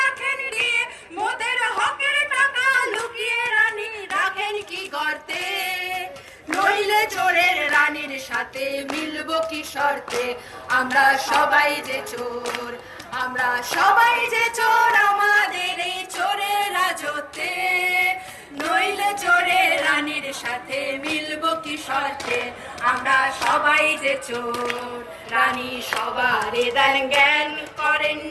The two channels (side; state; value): both; identical; correlation 1.00